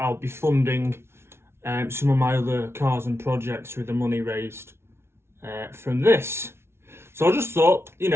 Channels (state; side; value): late; left; 0.12 ms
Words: be funding some of my other cars and projects with the money raised from this. So I just thought,